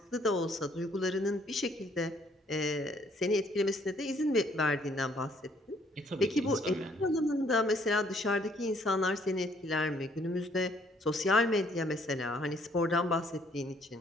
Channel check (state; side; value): normal; both; correlation 0.64